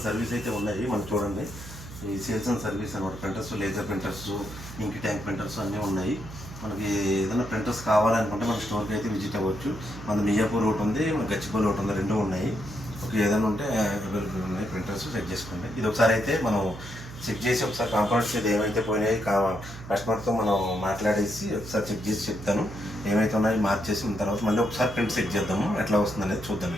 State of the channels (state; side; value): noise; right; hum, 13 dB below the sound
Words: service అయితే ఉన్నాయి. మనం చూడండి, ఈ సేల్స్ అండ్ సర్వీస్ అనమాట. ప్రింటర్స్, లేజర్ ప్రింటర్స్, ఇంక్ ట్యాంక్ ప్రింటర్స్ అన్నీ ఉన్నాయి. మనకి ఏదైనా ప్రింటర్స్ కావాలనుకుంటే మన స్టోర్కి అయితే విజిట్ అవ్వచ్చు. మన మియాపూర్ ఒకటి ఉంది, మన గచ్చిబౌలి ఒకటి ఉంది, రెండు ఉన్నాయి. ఓకే, ఏదైనా ఉంటే అవైలబుల్ ఉన్నాయి. ప్రింటర్స్ చెక్ చేసుకోండి. ఇది ఒకసారి అయితే మనం చెక్ చేసి ఒకసారి కాంపోనెంట్స్ అయితే ఏమైతే పోయినాయి కస్టమర్తో మనం మాట్లాడేసి ఒకసారి చెక్ చేసి చెప్తాను. ఏమైతే ఉన్నాయో మార్చేసిన తర్వాత మళ్ళీ ఒకసారి ప్రింట్ చెక్ చేద్దాము, ఎట్లా వస్తుంది అనేది